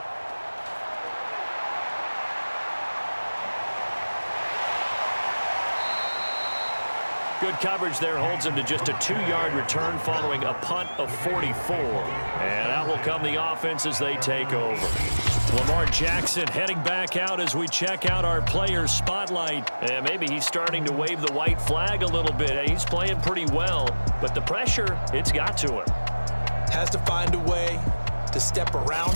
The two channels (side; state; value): both; inverted; correlation -1.00